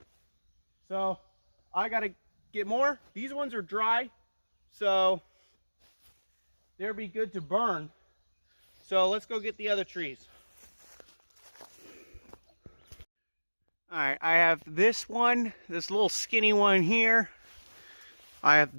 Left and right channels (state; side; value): inverted; both; correlation -1.00